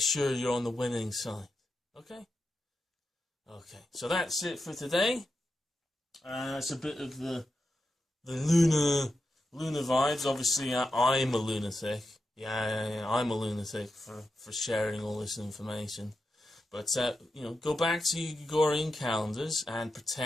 you're on the winning side. Okay? Okay. So that's it for today. It's a bit of the lunar vibes. Obviously, I'm a lunatic. Yeah, I'm a lunatic for sharing all this information. But, go back to your Gregorian calendars and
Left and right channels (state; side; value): normal; both; correlation 0.88